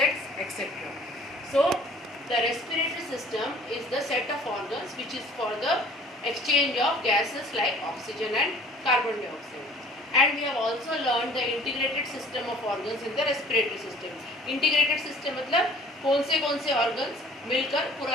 etc. So the respiratory system is the set of organs which is for the exchange of gases like oxygen and carbon dioxide. And we have also learned the integrated system of organs in the respiratory system. Integrated system मतलब कौन से organs मिलकर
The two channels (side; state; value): both; normal; correlation 0.52